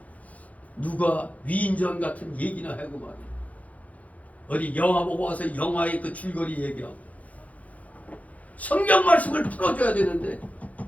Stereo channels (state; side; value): late; right; 0.070 ms